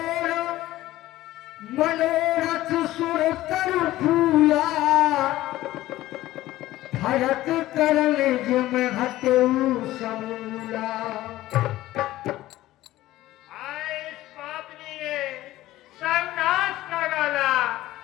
मनोरथ सुर कर फूला भरत करल जिम हटऊ समूला। इस पापनी ने सर्वनाश कर डाला।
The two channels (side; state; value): right; quieter; 15.8 dB